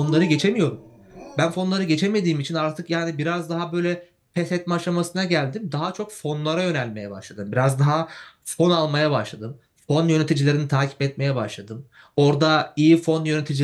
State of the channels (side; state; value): both; identical; correlation 1.00